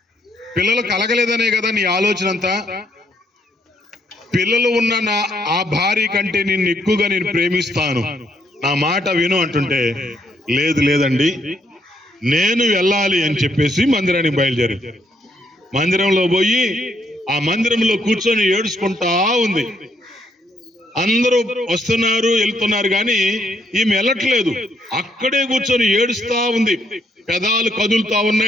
పిల్లలు కలగలేదనే కదా నీ ఆలోచన అంతా. పిల్లలు ఉన్న ఆ భార్య కంటే నిన్ను ఎక్కువగా నేను ప్రేమిస్తాను, నా మాట విను అంటుంటే, లేదండి నేను వెళ్ళాలి అని చెప్పేసి మందిరానికి బయలుదేరి మందిరంలో పోయి ఆ మందిరంలో కూర్చొని ఏడుచుకుంటా ఉంది. అందరూ వస్తున్నారు వెళ్తున్నారు కానీ ఈమె వెళ్ళట్లేదు, అక్కడే కూర్చొని ఏడుస్తా ఉంది. పెదాలు కదులుతా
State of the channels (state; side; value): normal; both; correlation 0.72